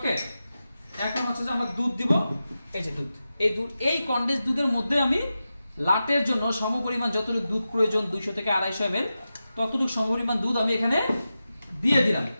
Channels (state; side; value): inverted; both; correlation -0.92